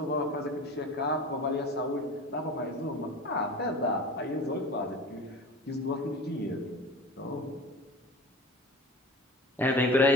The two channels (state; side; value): normal; both; correlation 0.36